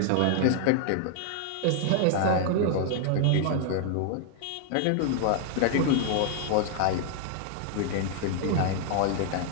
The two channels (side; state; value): both; different; correlation 0.00